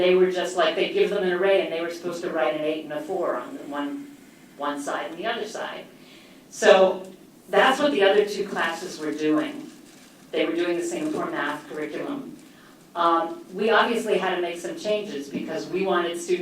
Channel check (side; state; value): both; identical; correlation 1.00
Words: were just like, they'd give them an array and they were supposed to write an 8 and a 4 on one side and the other side. So that's what the other two classes were doing. They were doing the Singapore Math curriculum. We obviously had to make some changes because we wanted